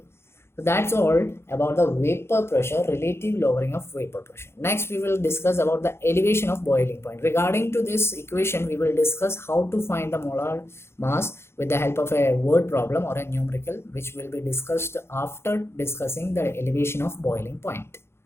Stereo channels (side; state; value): right; late; 0.12 ms